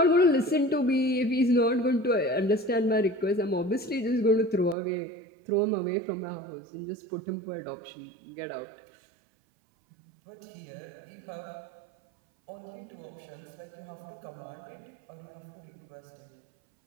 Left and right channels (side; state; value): left; drops out; at 4.8 s